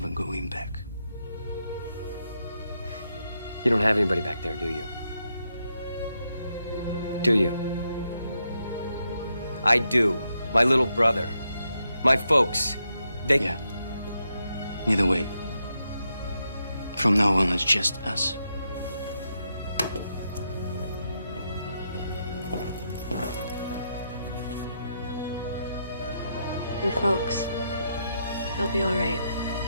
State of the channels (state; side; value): inverted; both; correlation -0.81